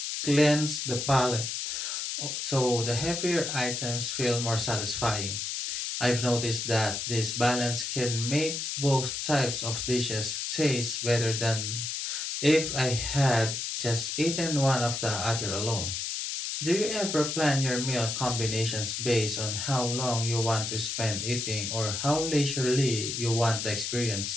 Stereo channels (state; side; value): noise; left; hiss, 3 dB below the sound